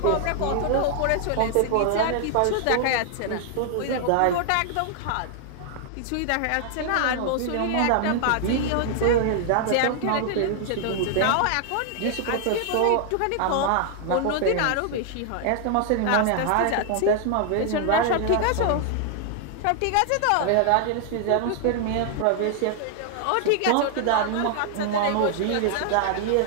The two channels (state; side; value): different; both; correlation 0.00